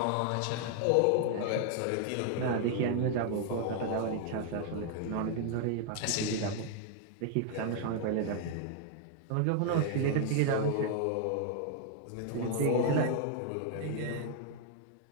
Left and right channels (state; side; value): different; both; correlation 0.00